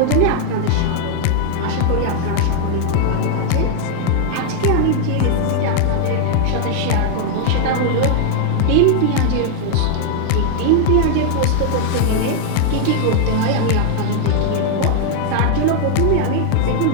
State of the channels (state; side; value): different; both; correlation 0.00